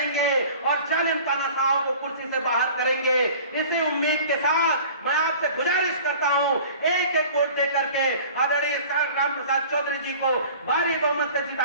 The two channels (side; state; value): both; inverted; correlation -0.44